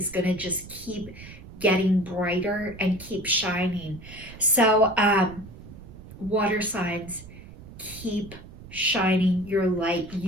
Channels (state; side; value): noise; right; rumble, 16 dB below the sound